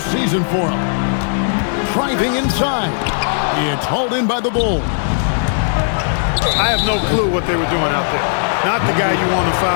for him. Driving inside. It's hauled in by the Bulls. I have no clue what they were doing out there. Not the guy you want to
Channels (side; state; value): right; silent; digital silence